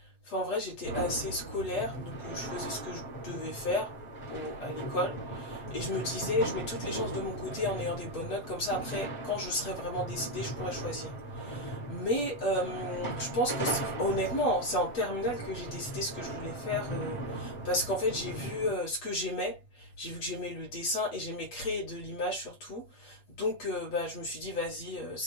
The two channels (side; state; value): right; late; 8.2 ms